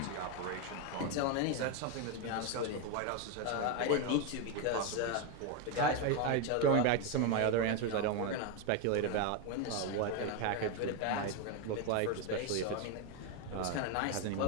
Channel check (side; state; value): both; different; correlation 0.02